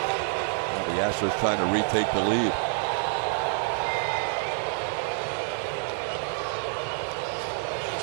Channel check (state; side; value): silent; left; 60 dB below the other